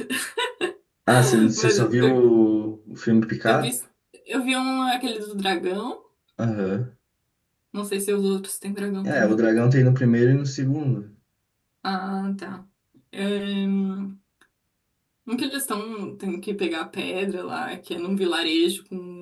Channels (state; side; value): identical; both; correlation 1.00